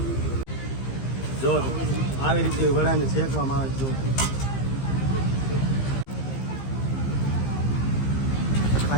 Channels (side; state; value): right; late; 15 ms